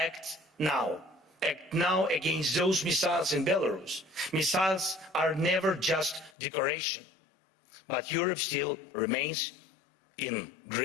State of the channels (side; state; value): right; drops out; at 6.4 s